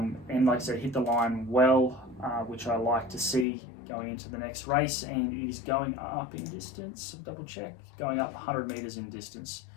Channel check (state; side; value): drops out; right; at 3.5 s